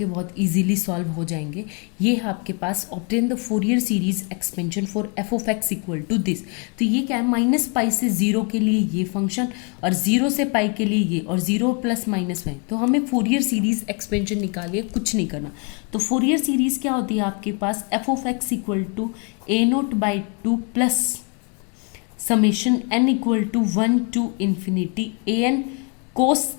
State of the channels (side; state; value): right; quieter; 34.7 dB